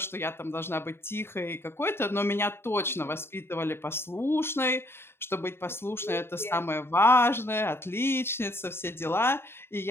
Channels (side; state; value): right; late; 0.11 ms